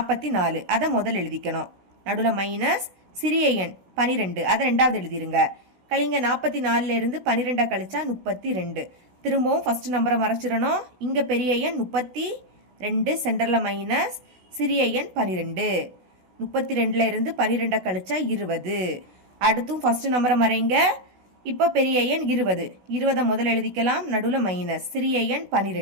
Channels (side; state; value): left; late; 16 ms